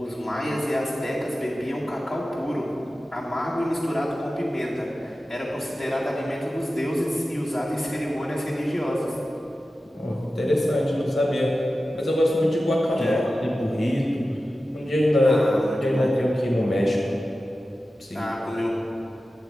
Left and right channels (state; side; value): normal; both; correlation 0.94